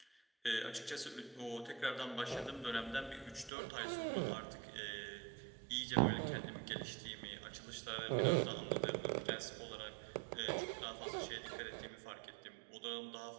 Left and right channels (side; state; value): left; drops out; at 3.5 s